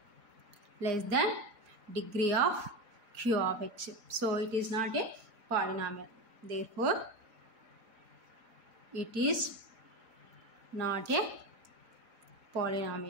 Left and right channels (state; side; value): late; left; 4.9 ms